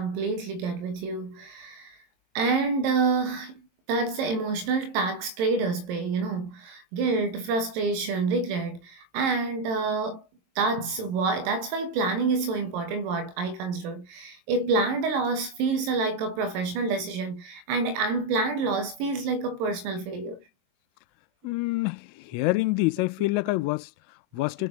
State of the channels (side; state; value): left; late; 22 ms